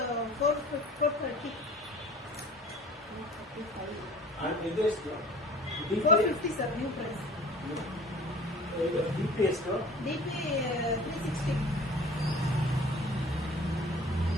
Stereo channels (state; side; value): normal; both; correlation 0.46